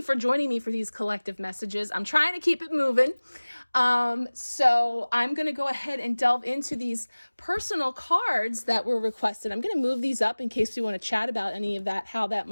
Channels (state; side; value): inverted; both; correlation -1.00